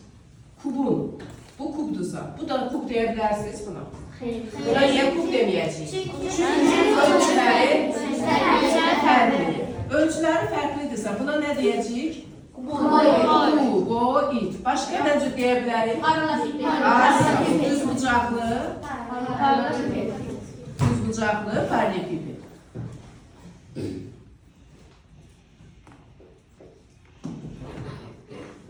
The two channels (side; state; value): both; identical; correlation 1.00